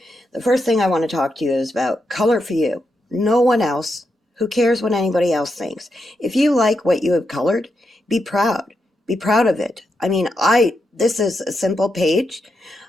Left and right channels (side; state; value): both; normal; correlation 0.84